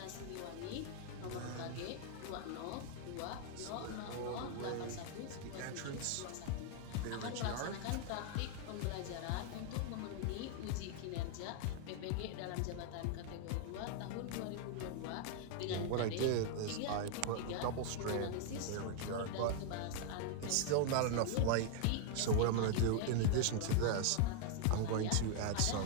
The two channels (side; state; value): both; different; correlation 0.00